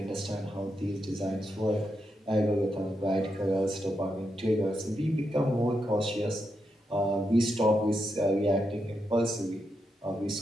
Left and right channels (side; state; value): both; normal; correlation 0.84